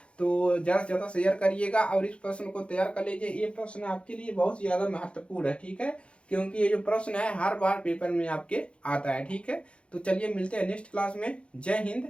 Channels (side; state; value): right; late; 0.059 ms